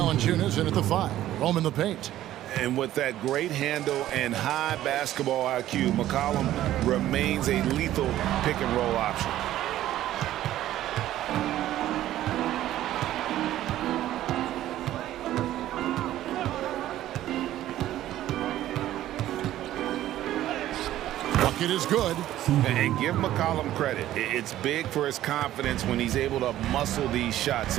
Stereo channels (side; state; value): left; quieter; 13.5 dB